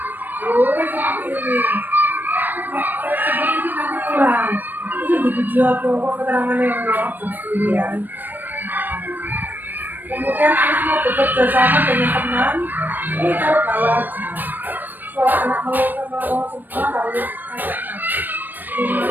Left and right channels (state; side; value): late; left; 0.091 ms